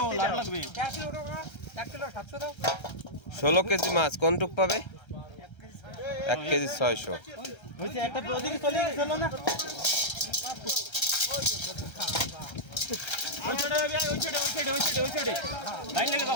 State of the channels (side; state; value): right; late; 1.3 ms